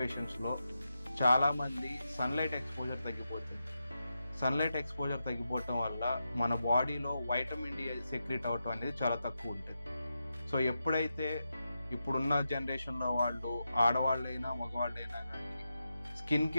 చాలామంది సన్లైట్ ఎక్స్పోజర్ తగ్గిపోతుంది. సన్లైట్ ఎక్స్పోజర్ తగ్గిపోవటం వల్ల మన బాడీలో వైటమిన్ డి సెక్రెట్ అవటం అనేది చాలా తక్కువ ఉంటుంది. సో ఎప్పుడైతే ఇప్పుడున్న జనరేషన్లో వాళ్ళు ఆడవాళ్ళైనా మగవాళ్ళైనా కానీ స్కిన్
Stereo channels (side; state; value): both; inverted; correlation -0.88